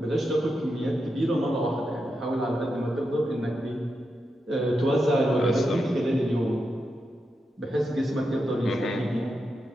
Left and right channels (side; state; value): both; normal; correlation 0.87